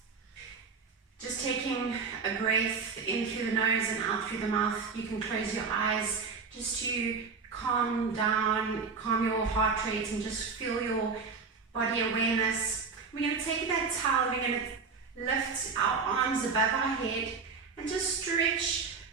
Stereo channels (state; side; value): quieter; left; 5.0 dB